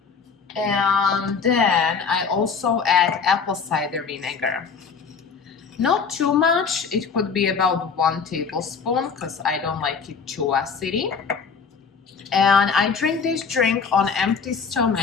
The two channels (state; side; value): quieter; right; 5.7 dB